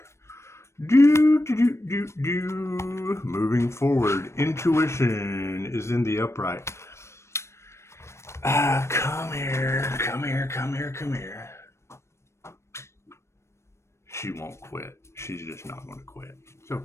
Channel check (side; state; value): right; late; 0.13 ms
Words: Moving forward. Intuition is in the upright. Come here. She won't quit. She's just not going to quit. It's